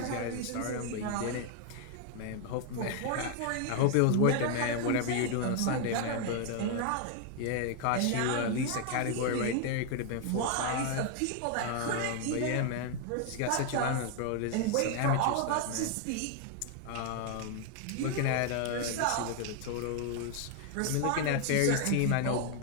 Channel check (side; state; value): both; different; correlation 0.00